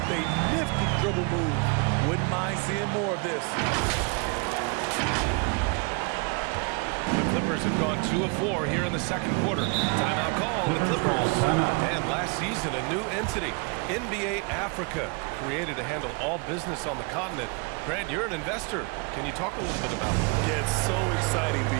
a nifty dribble move. Wouldn't mind seeing more of this. The Clippers have gone 2 of 4 here in the second quarter. Timeout call, the Clippers. And last season, a new entity, NBA Africa, created to handle all business on the continent. Grant, you're an investor. Can you talk a little bit about it? Yeah, it's so exciting,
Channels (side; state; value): left; quieter; 31.4 dB